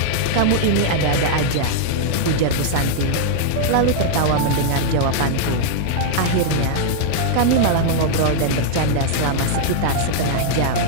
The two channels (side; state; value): both; different; correlation -0.01